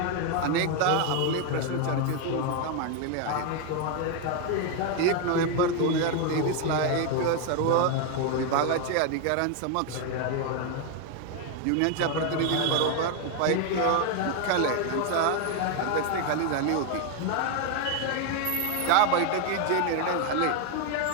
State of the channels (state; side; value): different; both; correlation 0.01